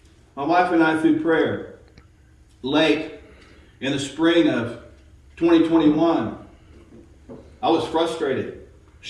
My wife and I, through prayer, late in the spring of 2021, I was frustrated.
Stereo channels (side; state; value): both; identical; correlation 1.00